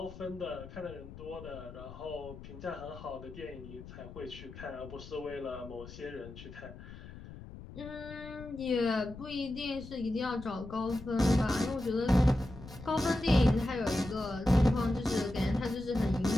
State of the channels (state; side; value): noise; left; rumble, 14 dB below the sound